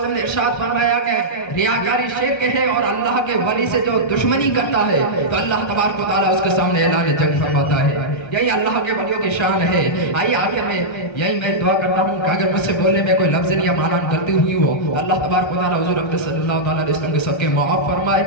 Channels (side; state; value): right; late; 1.3 ms